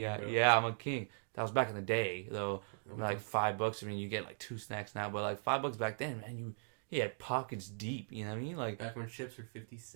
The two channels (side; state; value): left; silent; digital silence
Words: Yeah, I'm a king. That was back in the day though. I mean, like $5. I mean, you get like 2 snacks now, but like $5 back then, man, he had pockets deep. You know what I mean? Like back when chips were 50